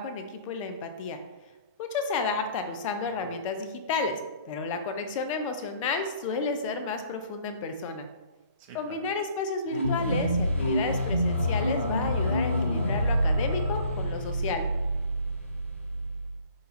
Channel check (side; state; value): both; inverted; correlation -0.54